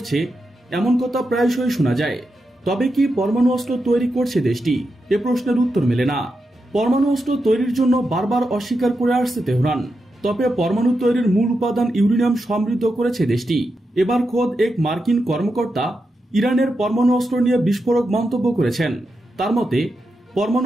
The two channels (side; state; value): both; normal; correlation 0.87